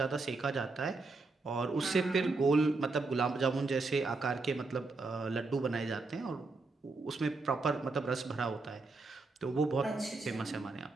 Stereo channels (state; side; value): quieter; left; 3.7 dB